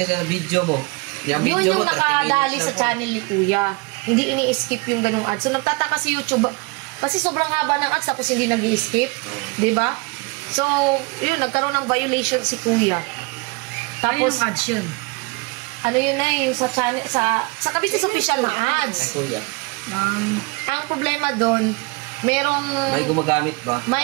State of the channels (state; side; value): quieter; left; 28.3 dB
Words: sa video mo. Yung yun video yung mo, 30 nakadali minutes sa na po. channel ni Kuya. Hindi ini-skip yung ganung ads. So nagtataka si YouTube kasi sobrang haba ng ads tapos hindi nag-i-skip, 'di ba? So, yun nagkaroon ng violation si Kuya. Tapos, Tapos ads yun. ano yun na yung sa channel sa Kabisis official na Ay, ads. Kuya. Ang problema doon, merong May gumagamit ba?